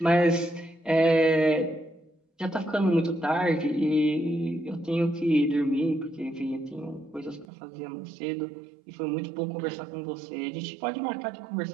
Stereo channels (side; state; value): left; drops out; at 7.5 s